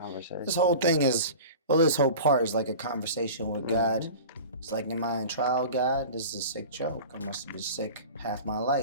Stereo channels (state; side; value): inverted; both; correlation -0.37